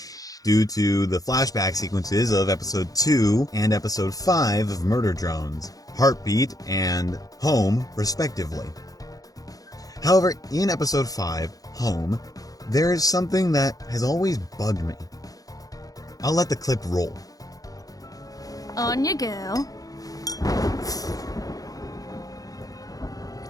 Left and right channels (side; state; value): right; late; 0.17 ms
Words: due to the flashback sequences of episode 2 and episode 5 of Murder Drones, Heartbeat and Home, respectively. However, in episode 5, Home, there is something that has always bugged me. I'll let the clip roll. On you go.